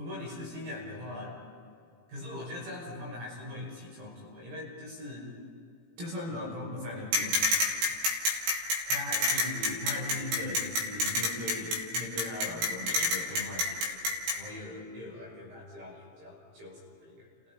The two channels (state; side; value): late; left; 18 ms